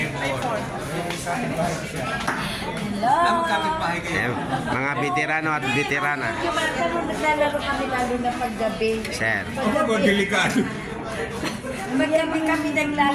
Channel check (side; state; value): both; identical; correlation 1.00